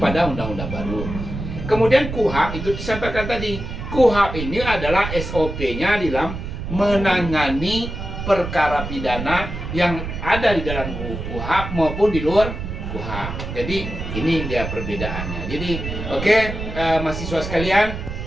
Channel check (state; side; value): noise; right; rumble, 6 dB below the sound